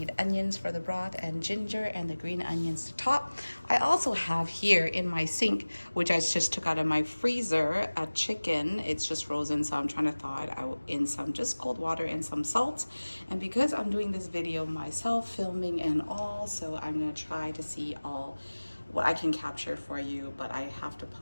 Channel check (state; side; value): inverted; both; correlation -1.00